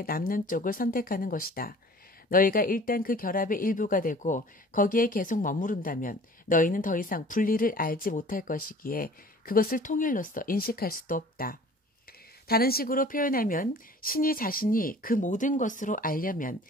남는 쪽을 선택하는 것이다. 너희가 일단 그 결합의 일부가 되고 거기에 계속 머무른다면 너희는 더 이상 분리를 알지 못할 것이기에 그것을 통일로서 인식할 수도 없다. 다른 식으로 표현하면 신이 자신이 그 모든 것으로 알려면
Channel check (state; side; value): normal; both; correlation 0.47